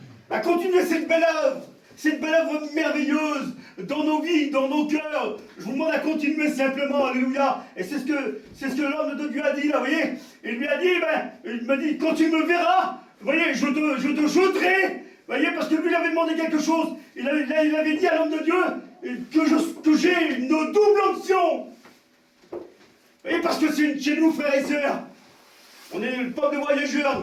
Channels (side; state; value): both; identical; correlation 1.00